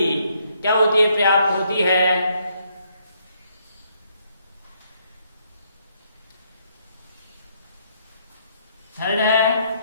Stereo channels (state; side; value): inverted; both; correlation -0.71